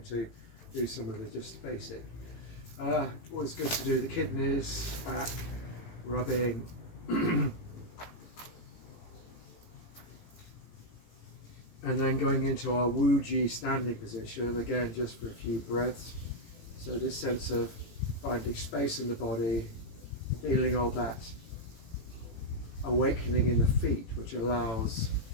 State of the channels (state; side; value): late; right; 18 ms